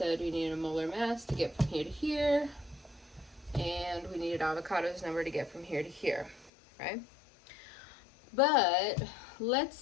we needed a molar mass to get from here to here, and we needed avocado's number to get from here to here, right? But let's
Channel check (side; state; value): right; drops out; at 6.5 s